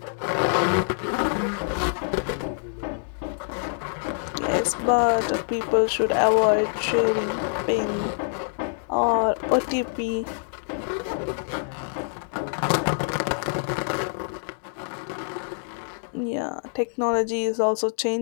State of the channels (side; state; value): right; silent; digital silence